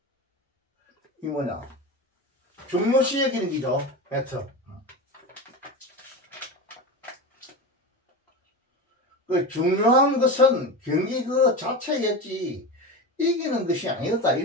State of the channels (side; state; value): both; normal; correlation 0.23